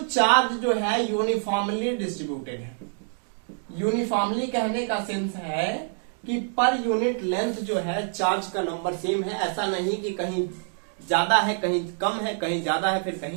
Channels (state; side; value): silent; left; 61 dB below the other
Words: चार्ज जो है यूनिफॉर्मली डिस्ट्रीब्यूटेड है। यूनिफॉर्मली कहने का सेंस है कि पर यूनिट लेंथ जो है चार्ज का नंबर सेम है, ऐसा नहीं कि कहीं ज्यादा है कहीं कम है, कहीं ज्यादा है फिर